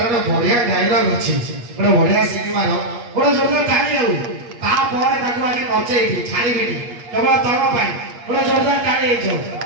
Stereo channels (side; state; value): left; late; 8.4 ms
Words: ଗୋଟେ ବଢିଆ ଡାଇଲଗ ଅଛି, ଗୋଟେ ବଢିଆ ସିନେମାର, ଗୋଟେ ଜୋରଦାର ତାଳି ଆଉ ତାପରେ ତାକୁ ଆଜି ନଚେଇବି ଛାଡ଼ିବିନି କେବଳ ତମ ପାଇଁ, ଗୋଟେ ଜୋରଦାର ତାଳି ହେଇଯାଉ।